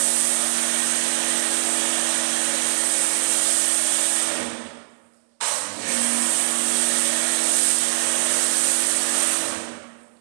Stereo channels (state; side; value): silent; left; digital silence